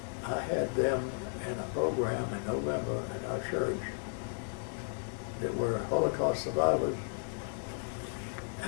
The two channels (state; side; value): silent; right; digital silence